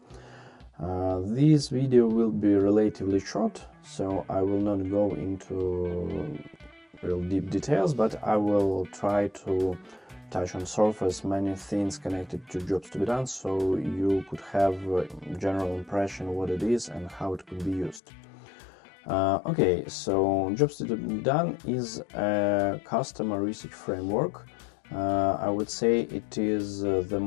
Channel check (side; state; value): right; drops out; at 18.0 s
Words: This video will be relatively short, so I will not go into real deep details, but I will try to touch on surface many things connected to jobs to be done, so you could have a general impression what it is and how it could be used. Okay, so jobs to be done is a customer research framework. I would say it is the